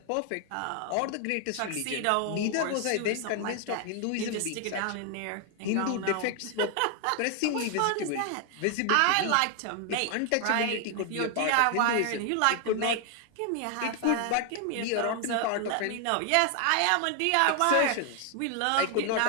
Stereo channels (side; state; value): both; different; correlation 0.00